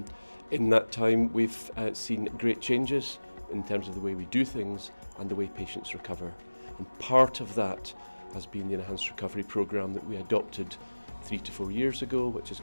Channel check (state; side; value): inverted; both; correlation -1.00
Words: in that time we've seen great changes in terms of the way we do things and the way patients recover. And part of that has been the Enhanced Recovery Programme that we adopted 3 to 4 years ago, which has